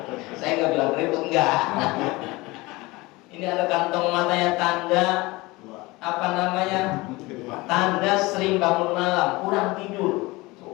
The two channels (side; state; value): right; quieter; 22.2 dB